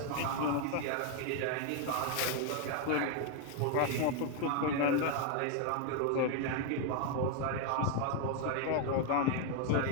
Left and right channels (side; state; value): both; different; correlation 0.01